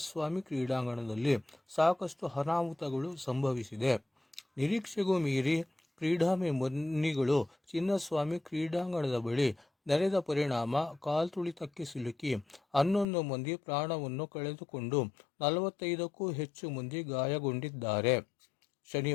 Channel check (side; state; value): right; drops out; at 13.1 s